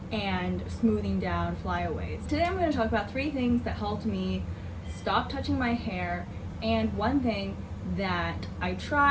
and smoothing down flyaways. Today I'm going to talk about 3 things that helped me stop touching my hair, and one thing that I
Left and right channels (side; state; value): both; identical; correlation 1.00